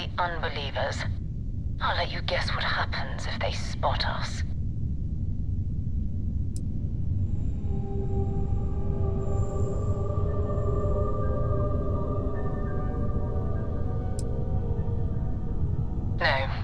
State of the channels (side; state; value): both; identical; correlation 1.00